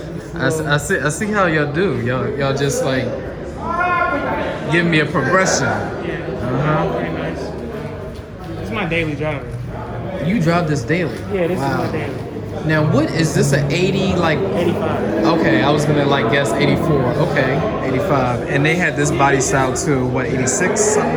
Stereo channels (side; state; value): both; identical; correlation 1.00